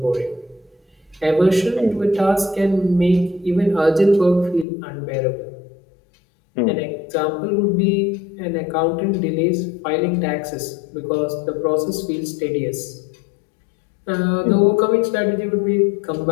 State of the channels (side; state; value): right; drops out; at 4.7 s